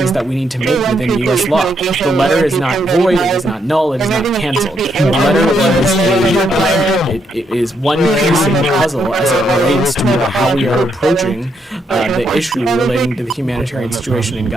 that we need to make within U.S. law. The letter is not void, it is not null, it is not canceled. The letter it is one piece in the puzzle as it relates to how we are approaching the issue relating to the humanitarian situation in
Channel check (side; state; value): both; normal; correlation 0.77